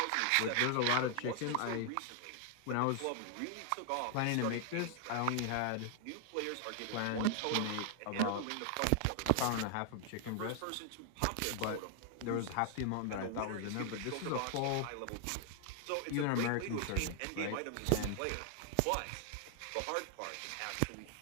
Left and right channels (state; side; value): different; both; correlation 0.00